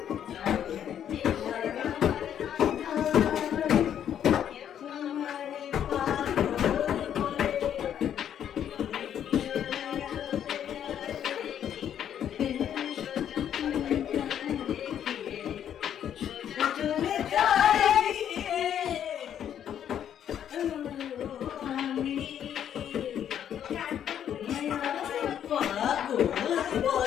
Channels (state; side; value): quieter; right; 9.6 dB